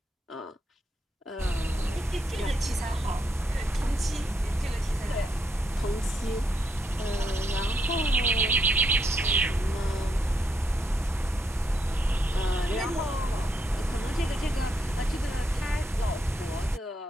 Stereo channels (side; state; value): both; normal; correlation 0.78